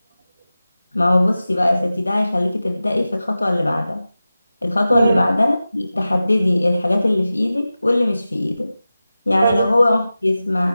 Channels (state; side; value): inverted; both; correlation -0.95